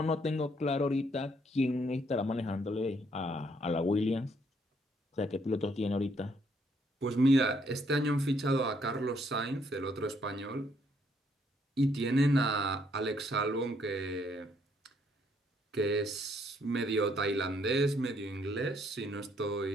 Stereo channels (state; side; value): normal; both; correlation 0.69